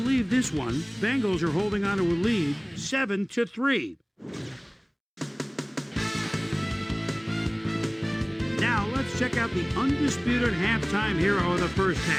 this one. Bengals are holding on to a lead, 7-3. Now let's check out the undisputed halftime hero of the first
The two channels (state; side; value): identical; both; correlation 1.00